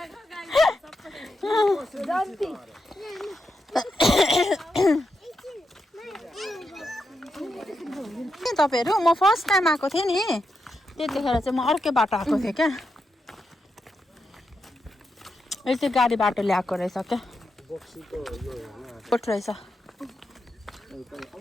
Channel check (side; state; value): both; normal; correlation 0.85